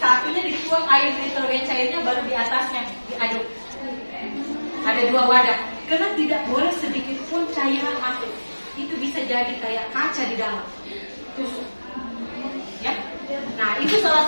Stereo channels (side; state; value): both; inverted; correlation -1.00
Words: satunya dituang air nitrogen cairnya, baru di atasnya diaduk. Ada 2 wadah, karena tidak boleh sedikit pun cairan masuk. Itu bisa jadi kayak kaca di dalam. Tusuk. Ya. Nah, itu salah